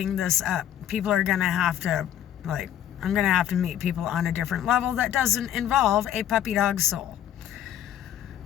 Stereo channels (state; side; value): quieter; right; 10.9 dB